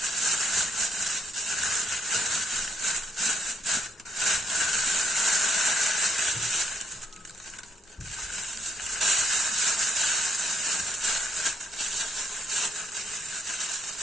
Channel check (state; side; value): normal; both; correlation 0.74